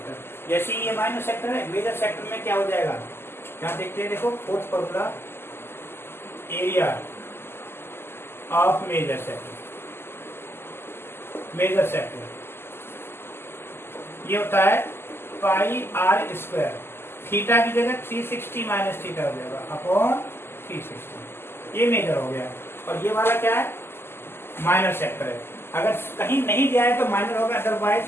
जैसे ये माइनर सेक्टर है, मेजर सेक्टर में क्या हो जाएगा, यहाँ देखते हैं, देखो fourth formula, area of major sector ये होता है पाई आर स्क्वायर, थीटा की जगह 360 माइनस थीटा हो जाएगा अपॉन 360, ये मेजर हो गया। और ये वाला क्या है, माइनर सेक्टर है। अगर कहीं नहीं दिया है तो माइनर होगा, अदरवाइज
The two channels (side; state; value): right; late; 0.12 ms